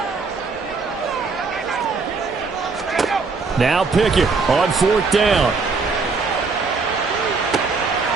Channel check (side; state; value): left; quieter; 4.4 dB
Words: Now Pickett on 4th down.